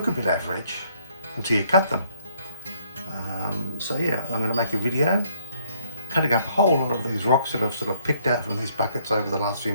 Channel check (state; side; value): inverted; both; correlation -0.65